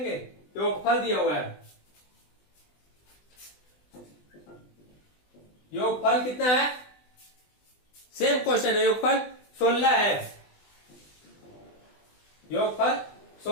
योगफल दिया हुआ है। योगफल कितना है? सेम क्वेश्चन है। योगफल 16 है, योगफल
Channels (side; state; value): right; late; 20 ms